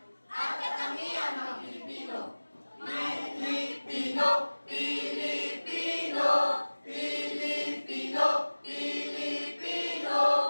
at katangian ng Pilipino. Pilipino, Pilipino, Pilipino, Pilipino.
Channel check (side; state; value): both; inverted; correlation -1.00